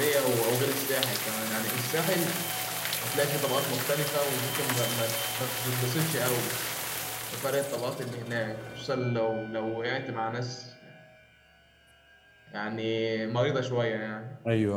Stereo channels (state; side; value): identical; both; correlation 1.00